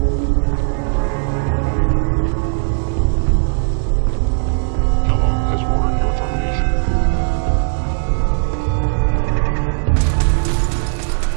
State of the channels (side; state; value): left; silent; 68 dB below the other